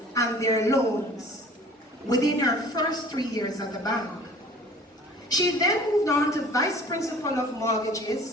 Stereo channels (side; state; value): both; normal; correlation 0.47